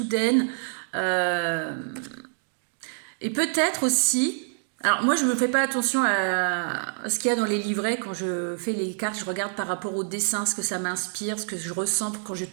Et peut-être aussi... Alors moi, je ne me fais pas attention à ce qu'il y a dans les livrets. Quand je fais les cartes, je regarde par rapport au dessin, ce que ça m'inspire, ce que je ressens quand je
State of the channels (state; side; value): silent; left; digital silence